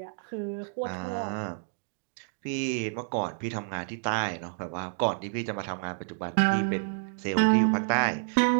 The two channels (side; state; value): left; silent; digital silence